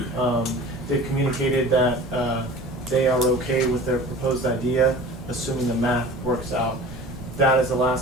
They've communicated that they are okay with their proposed idea, assuming the math works out. That is the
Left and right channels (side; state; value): both; normal; correlation 0.40